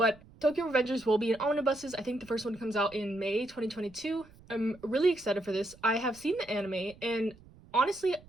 Tokyo Revengers will be in omnibuses. I think the first one comes out in May 2022. I'm really excited for this. I have seen the anime, and honestly,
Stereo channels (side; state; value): right; noise; rumble, 24 dB below the sound